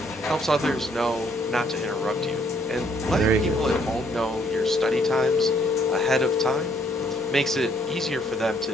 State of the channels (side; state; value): both; normal; correlation 0.67